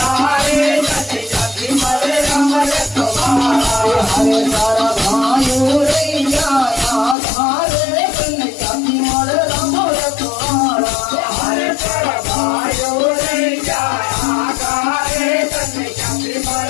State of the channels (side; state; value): right; drops out; at 7.2 s